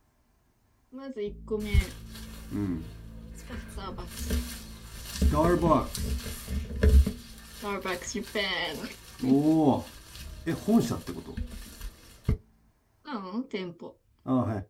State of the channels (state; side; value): identical; both; correlation 1.00